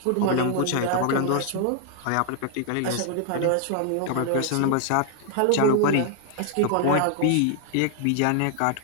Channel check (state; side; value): different; both; correlation 0.00